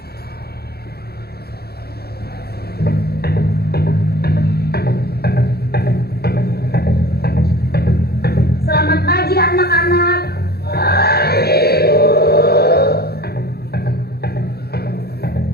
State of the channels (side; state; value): right; late; 0.46 ms